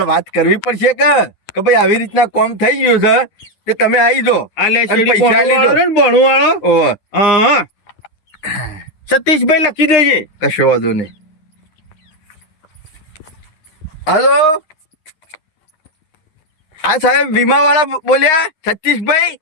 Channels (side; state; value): right; late; 9.7 ms